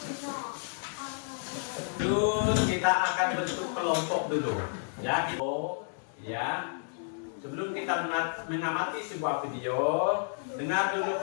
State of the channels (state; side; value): silent; right; digital silence